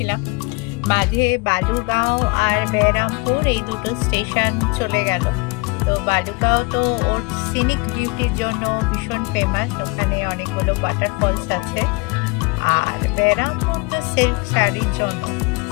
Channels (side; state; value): right; quieter; 27.4 dB